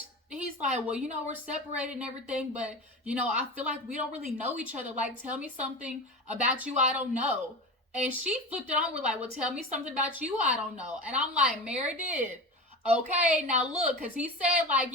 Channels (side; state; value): both; normal; correlation 0.29